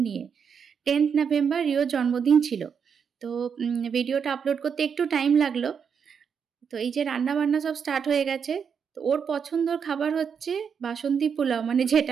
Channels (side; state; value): left; quieter; 6.8 dB